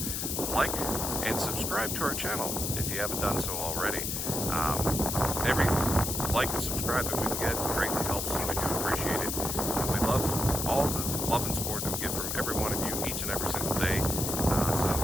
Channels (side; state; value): left; noise; hiss, 2 dB below the sound